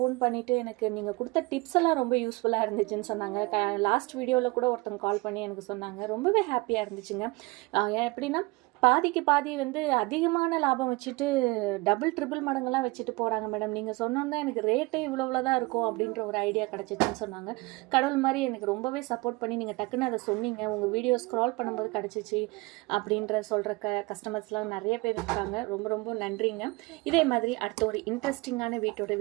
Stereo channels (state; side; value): quieter; left; 24.3 dB